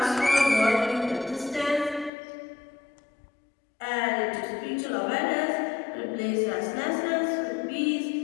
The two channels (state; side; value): drops out; right; at 2.1 s